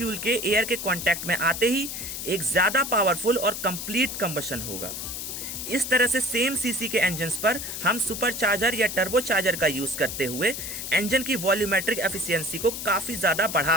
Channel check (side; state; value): left; noise; hiss, 6 dB below the sound